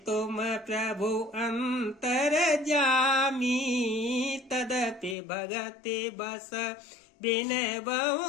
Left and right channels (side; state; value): right; drops out; at 5.2 s